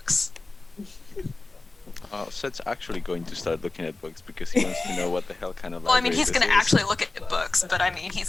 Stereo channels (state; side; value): quieter; right; 3.4 dB